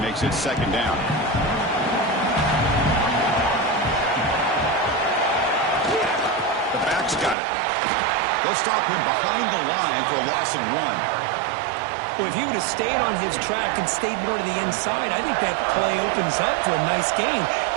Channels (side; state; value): left; drops out; at 7.4 s